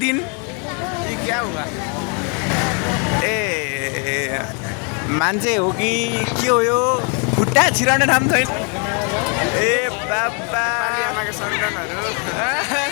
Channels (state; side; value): quieter; right; 36.6 dB